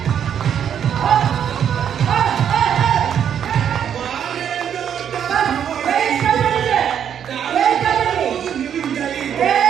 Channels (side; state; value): left; quieter; 8.8 dB